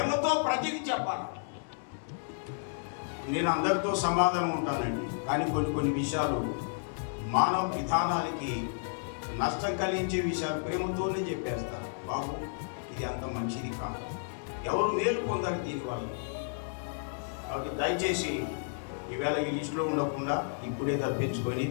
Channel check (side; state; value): right; silent; digital silence